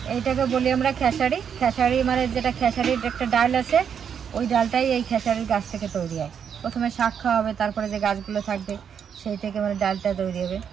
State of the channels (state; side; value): quieter; left; 7.7 dB